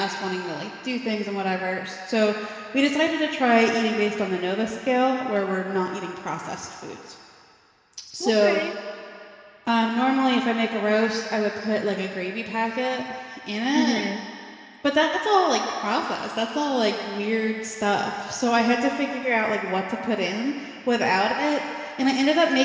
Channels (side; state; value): both; identical; correlation 1.00